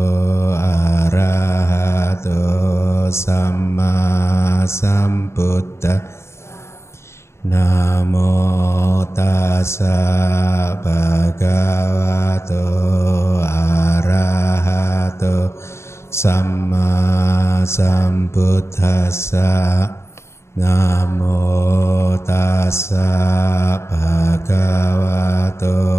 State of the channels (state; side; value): late; right; 0.13 ms